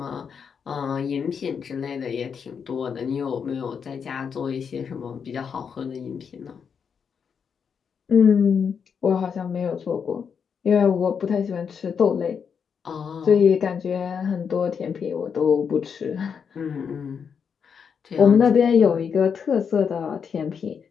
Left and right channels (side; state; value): right; quieter; 6.7 dB